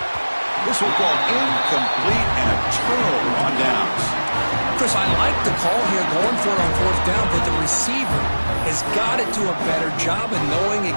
This will go incomplete and a turnover on downs. Chris, I like the call here going for it on 4th down, but the receiver has got to do a better job of knowing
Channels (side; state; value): both; inverted; correlation -1.00